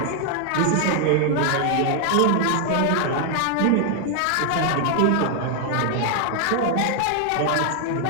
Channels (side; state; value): both; different; correlation 0.00